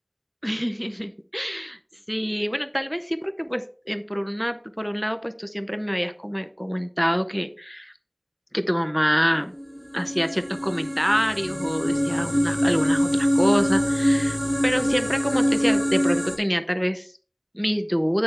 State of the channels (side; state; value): both; identical; correlation 1.00